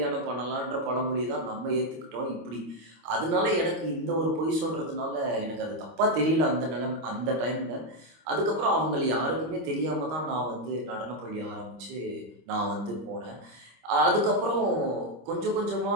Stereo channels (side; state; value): left; late; 25 ms